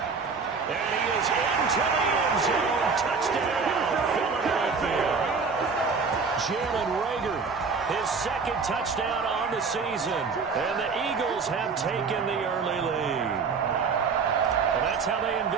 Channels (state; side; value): quieter; left; 5.0 dB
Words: And he is into the end zone. Touchdown, Philadelphia. Jalen Reagor, his second touchdown on the season. And the Eagles have taken the early lead. Well, that's how they